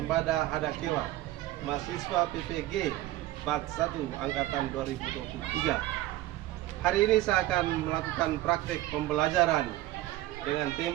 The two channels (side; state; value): left; quieter; 15.8 dB